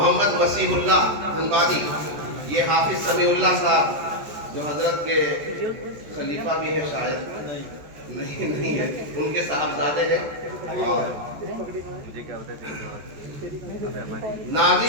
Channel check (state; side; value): late; left; 14 ms